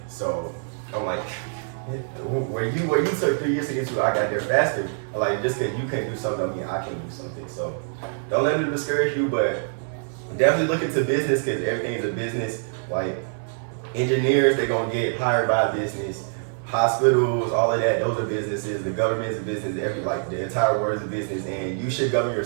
So I'm like, where you took 3 years to get to, I got there faster. Like just because you can't do something, I mean I can't do something. So don't let it discourage you, but definitely look into business because everything is a business. Like engineers, they're gonna get hired by a business. Hospitals, all of that, those are businesses. The government is a business. The entire world is a business, and you should govern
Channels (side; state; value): left; silent; 56 dB below the other